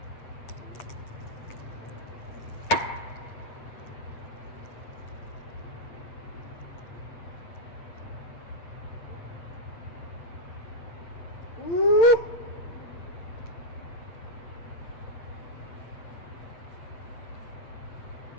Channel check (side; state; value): right; late; 8.8 ms